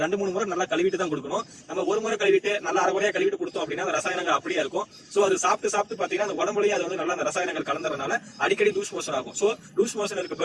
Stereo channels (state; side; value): identical; both; correlation 1.00